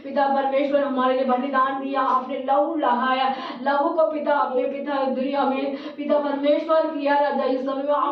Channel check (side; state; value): both; identical; correlation 1.00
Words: पिता परमेश्वर हमारे लिए बलिदान दिया, आपने लहू लहाया, लहू को पिता अपने पिता दुनिया में पिता परमेश्वर किया राजा। इस समय में